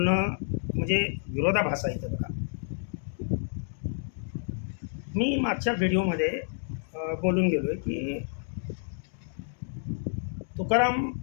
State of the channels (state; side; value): silent; right; digital silence